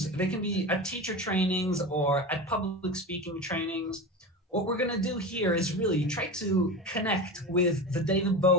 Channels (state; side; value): normal; both; correlation 0.26